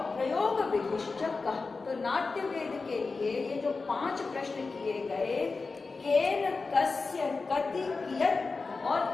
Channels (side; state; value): right; quieter; 4.1 dB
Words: प्रयोग विधिश्च कः। तो नाट्यवेद के लिए ये जो 5 प्रश्न किए गए, केन, कस्य, कति, कियत् और